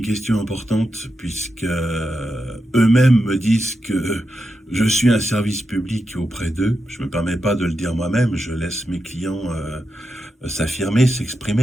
question importante puisque eux-mêmes me disent que je suis un service public auprès d'eux. Je me permets pas de le dire moi-même, je laisse mes clients s'affirmer,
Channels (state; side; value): normal; both; correlation 0.87